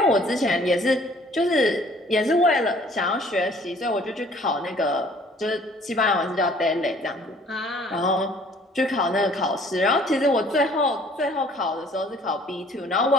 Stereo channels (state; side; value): normal; both; correlation 0.55